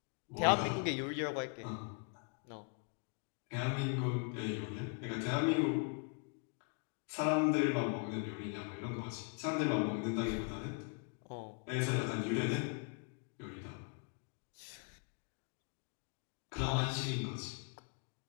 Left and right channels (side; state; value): right; quieter; 37.5 dB